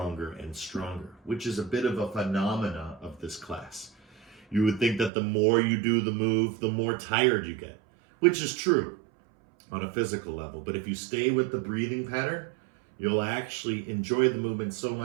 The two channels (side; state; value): left; drops out; at 5.1 s